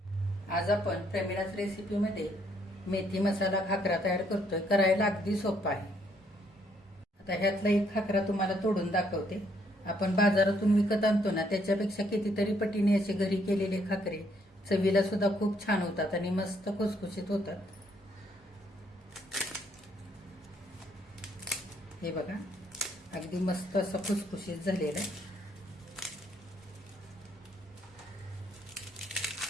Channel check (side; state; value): both; normal; correlation 0.69